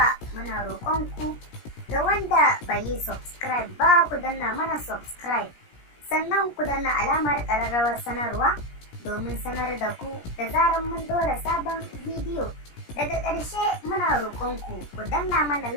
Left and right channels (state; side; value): late; right; 17 ms